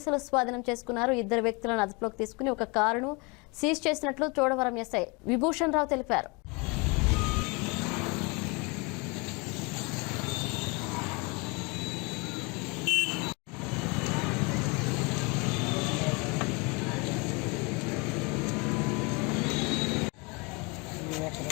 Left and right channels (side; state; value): right; quieter; 29.0 dB